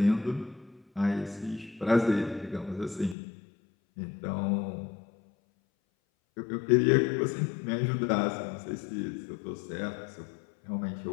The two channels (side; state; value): right; drops out; at 3.2 s